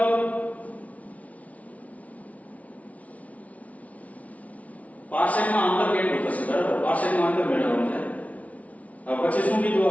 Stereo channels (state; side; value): late; right; 0.068 ms